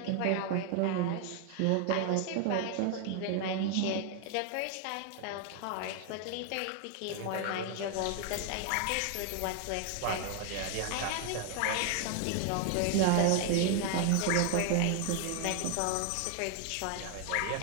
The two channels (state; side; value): different; both; correlation 0.00